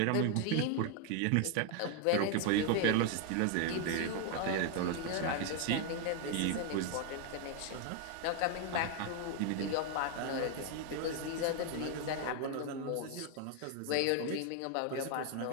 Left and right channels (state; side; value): different; both; correlation 0.01